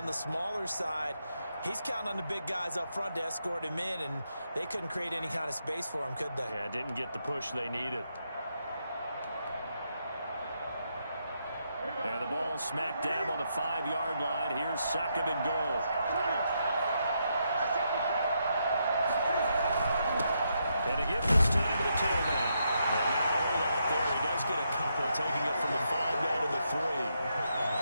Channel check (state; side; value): inverted; both; correlation -0.80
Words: the smaller side. He's counting on the big guys up front to escort him in, and they couldn't create any kind of space for him, could they? Yeah, didn't get the push they needed. And the ball smack dab on the 5-yard line. Here's 2nd and goal. And a give this time to the tailback. And not a whole lot there. He does get a couple, taking it from the 5 down to the 3.